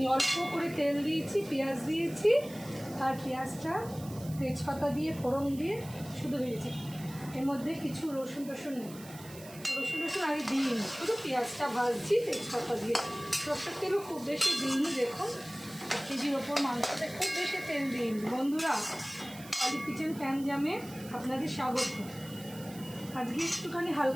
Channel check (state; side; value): noise; right; hiss, 18 dB below the sound